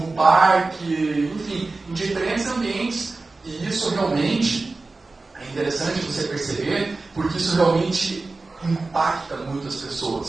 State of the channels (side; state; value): left; quieter; 3.5 dB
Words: parque, enfim, em diferentes ambientes. E isso realmente é interessante você perceber, porque isso realmente impacta muitas